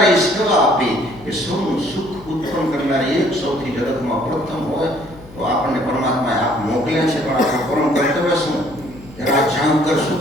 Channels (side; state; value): left; noise; hum, 20 dB below the sound